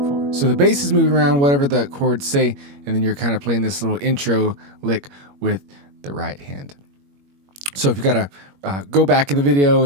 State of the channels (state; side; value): late; left; 21 ms